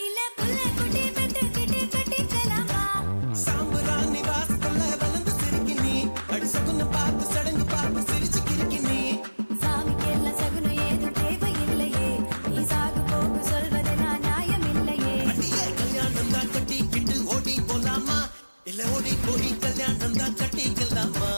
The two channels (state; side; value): inverted; both; correlation -1.00